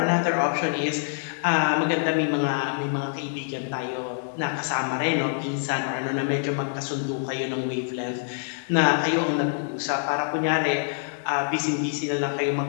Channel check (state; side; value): silent; right; digital silence